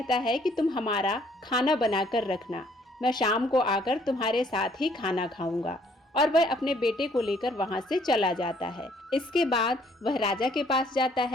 है कि तुम हमारा खाना बनाकर रखना, मैं शाम को आकर तुम्हारे साथ ही खाना खाऊंगा। और वह अपने बेटे को लेकर वहां से चला जाता है। इसके बाद वह राजा के पास जाता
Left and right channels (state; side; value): normal; both; correlation 0.63